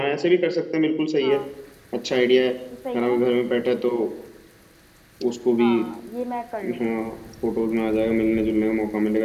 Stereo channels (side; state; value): both; identical; correlation 1.00